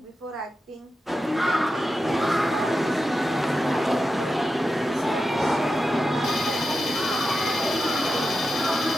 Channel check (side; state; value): both; normal; correlation 0.91